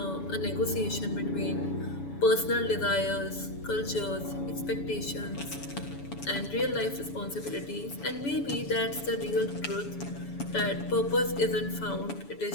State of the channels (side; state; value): right; late; 7.1 ms